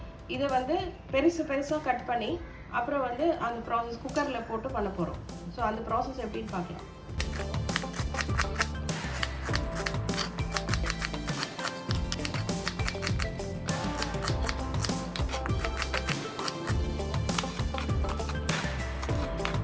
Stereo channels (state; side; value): identical; both; correlation 1.00